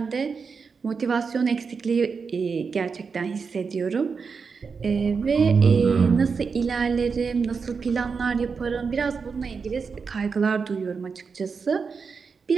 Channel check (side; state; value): left; quieter; 5.3 dB